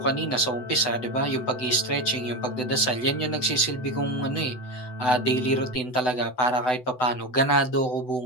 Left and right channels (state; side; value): late; right; 7.9 ms